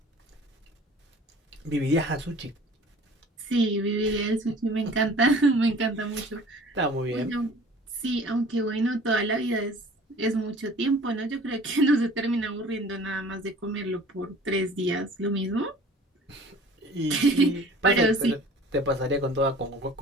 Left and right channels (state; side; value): normal; both; correlation 0.47